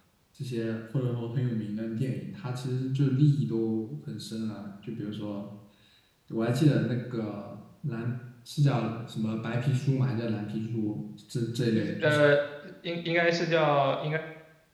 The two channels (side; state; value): both; identical; correlation 1.00